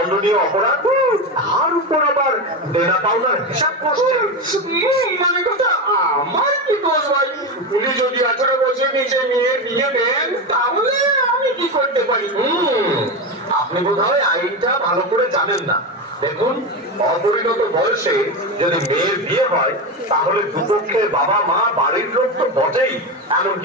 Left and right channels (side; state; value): both; normal; correlation 0.17